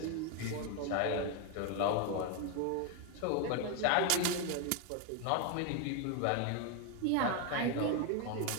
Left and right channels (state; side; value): different; both; correlation 0.01